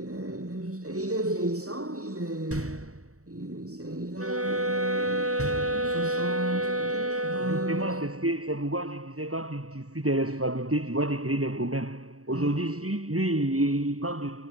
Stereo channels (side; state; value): left; late; 0.65 ms